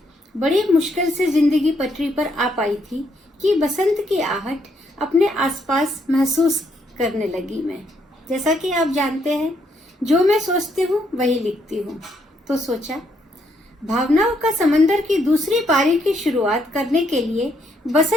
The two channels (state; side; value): normal; both; correlation 0.74